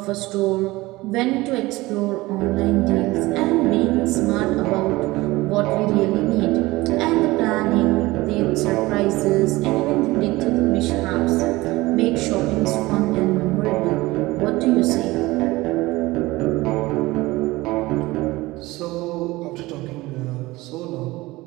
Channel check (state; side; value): quieter; left; 20.1 dB